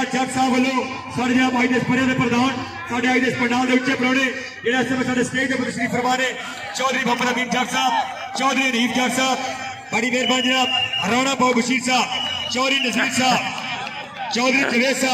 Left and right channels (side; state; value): both; identical; correlation 1.00